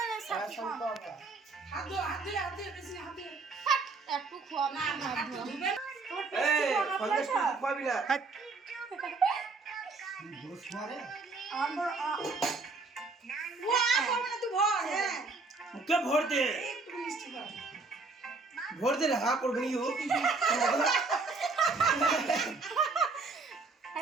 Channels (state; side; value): quieter; left; 3.9 dB